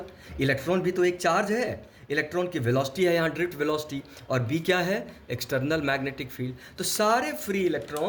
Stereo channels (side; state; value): both; identical; correlation 1.00